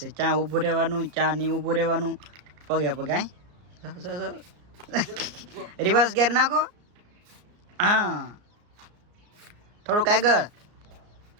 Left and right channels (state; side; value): late; left; 34 ms